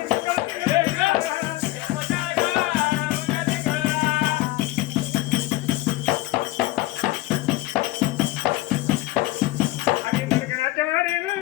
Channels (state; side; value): quieter; right; 18.0 dB